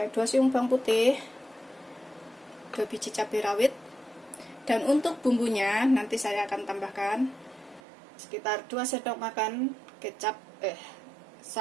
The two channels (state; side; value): drops out; left; at 7.8 s